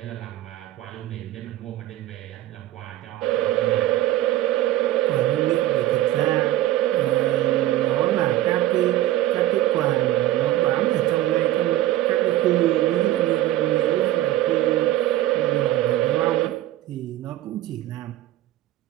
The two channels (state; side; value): quieter; left; 14.6 dB